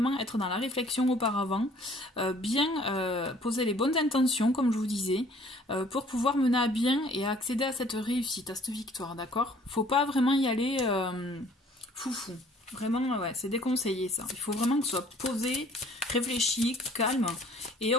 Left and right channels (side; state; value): both; normal; correlation 0.56